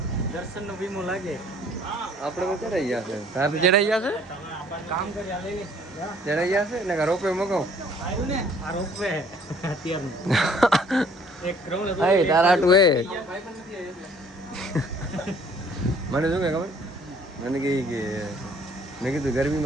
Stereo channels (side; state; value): both; normal; correlation 0.58